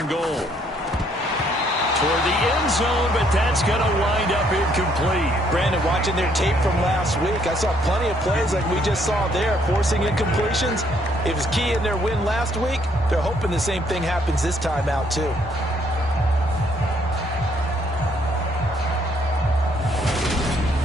and goal? for the end zone, but that's going to wind up incomplete. Brandon, watching their tape from last week, I saw plenty of plays like we just saw there, forcing incompletions. It was key in their win last week. They're hoping the same thing happens this time out, too.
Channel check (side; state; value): both; normal; correlation 0.68